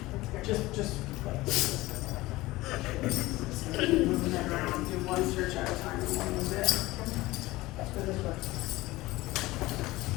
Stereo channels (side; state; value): right; quieter; 19.1 dB